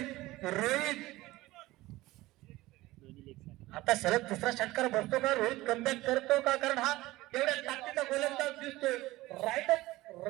रोहित दोन्ही लेग आता सलग दुसरा षटकार बसतो का, रोहित कमबॅक करतो का, कारण हा एवढ्या ताकदीचा गोलंदाज दिसतोय. राईट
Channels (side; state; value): left; quieter; 18.4 dB